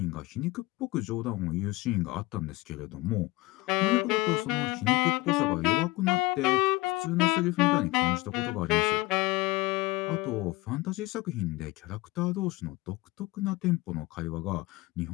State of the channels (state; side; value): quieter; right; 20.6 dB